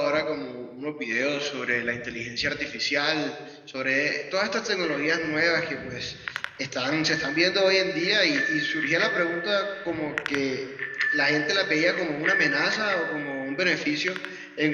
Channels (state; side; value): identical; both; correlation 1.00